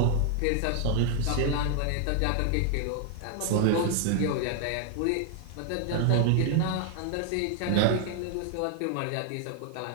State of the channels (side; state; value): both; different; correlation 0.00